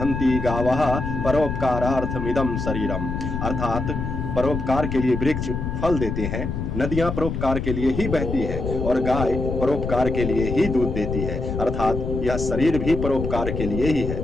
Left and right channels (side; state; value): left; noise; rumble, 4 dB below the sound